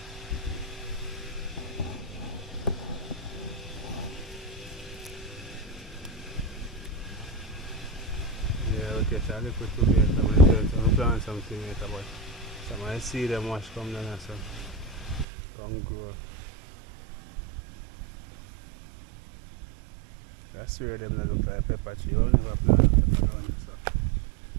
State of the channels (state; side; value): drops out; left; at 15.2 s